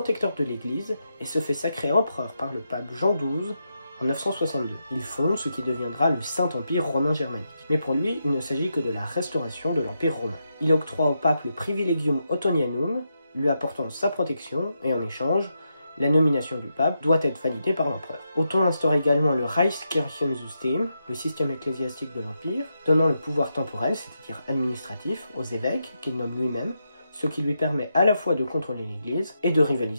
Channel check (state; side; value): inverted; both; correlation -0.84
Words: de l'Église et se fait sacrer empereur par le pape Jean XII en 962. Il fonde ce qui deviendra le Saint-Empire romain germanique. Mais pour lui, il ne s'agit que de la restauration de l'Empire romain. Il octroie au pape le privilegium Ottonianum, lui apportant sa protection, et en échange, la nomination du pape doit être validée par l'empereur. Othon instaure également le Reichskirchensystem, le système ecclésiastique de l'Empire, donnant le pouvoir temporel, c'est-à-dire administratif, aux évêques, qu'il nomme lui-même, ce qui lui permet à la fois de contrôler l'Église et de